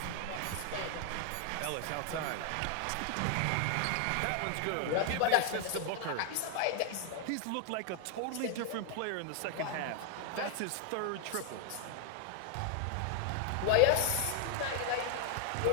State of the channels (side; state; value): both; different; correlation 0.00